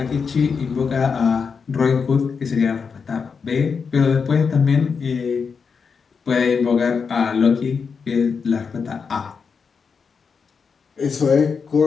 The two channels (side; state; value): right; quieter; 5.7 dB